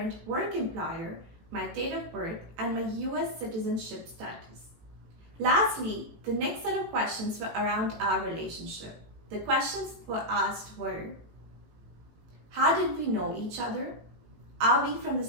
work employer, my date of birth, and my US citizenship status. Lastly, the next set of questions were around our relationship. The questions were asked were, how did we know each other? Are we from the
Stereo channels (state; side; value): late; left; 18 ms